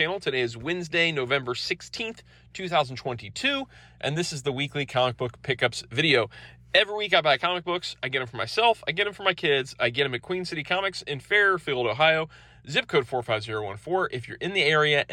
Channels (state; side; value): identical; both; correlation 1.00